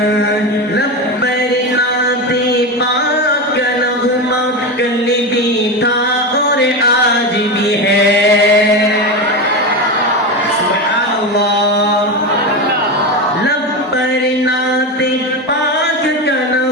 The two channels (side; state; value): both; normal; correlation 0.18